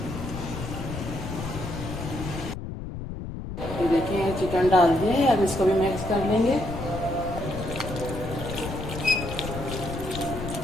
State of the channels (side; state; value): left; noise; rumble, 7 dB below the sound